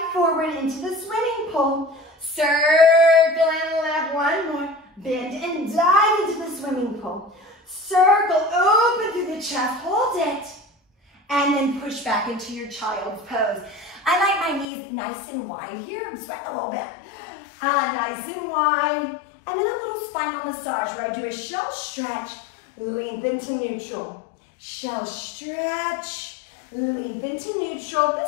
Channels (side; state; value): right; drops out; at 14.7 s